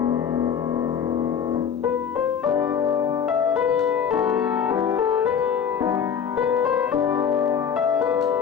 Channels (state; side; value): quieter; right; 7.6 dB